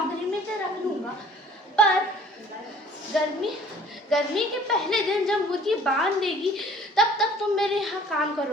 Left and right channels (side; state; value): both; normal; correlation 0.53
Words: में तो रख लूंगा, पर गर्मी के पहले दिन जब मुर्गी बांध देगी तब तक तुम मेरे यहाँ काम